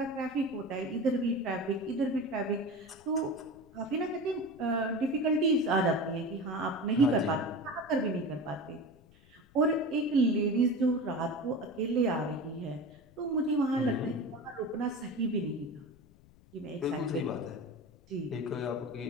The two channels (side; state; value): left; noise; rumble, 26 dB below the sound